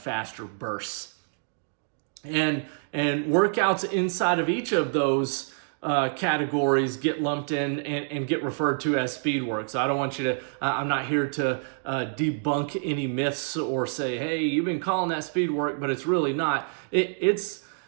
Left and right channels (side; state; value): left; silent; 60 dB below the other